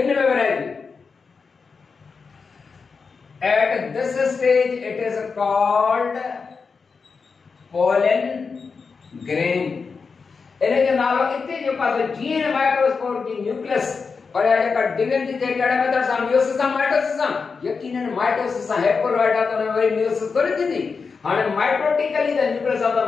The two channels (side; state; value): right; quieter; 5.1 dB